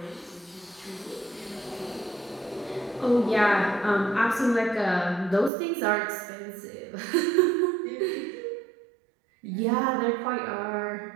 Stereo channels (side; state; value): left; drops out; at 5.5 s